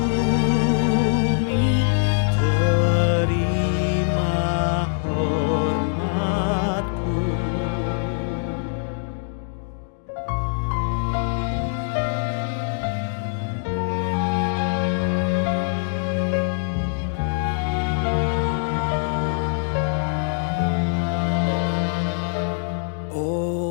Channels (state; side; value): silent; right; digital silence